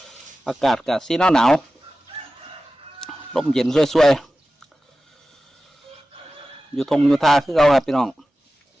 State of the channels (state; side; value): normal; both; correlation 0.95